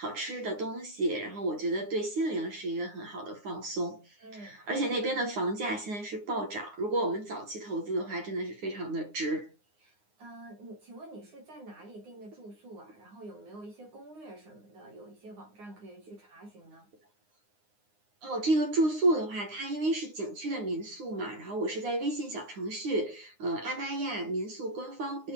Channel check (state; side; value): late; left; 9.7 ms